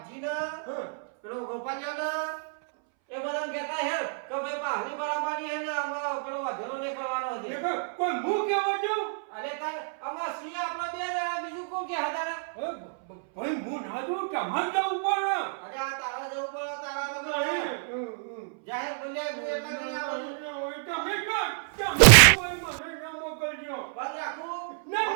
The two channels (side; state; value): left; silent; 59 dB below the other